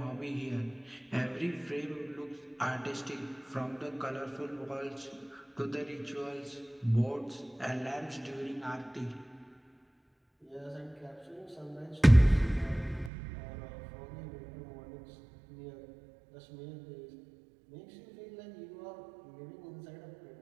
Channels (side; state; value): left; drops out; at 13.1 s